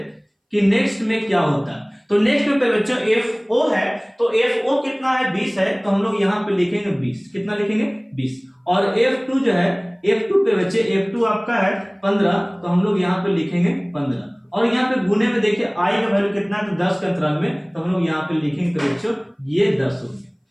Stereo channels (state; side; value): identical; both; correlation 1.00